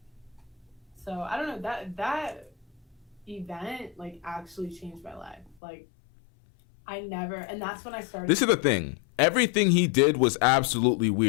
So I don't know, that event like actually changed my life. Like, and that's when I started. This is the thing. Everything he did was absolutely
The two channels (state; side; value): drops out; right; at 5.6 s